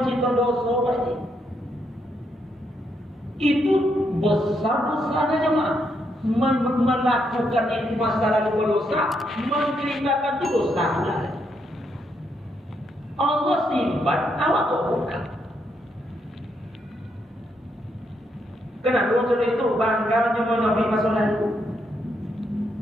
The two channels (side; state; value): both; normal; correlation 0.77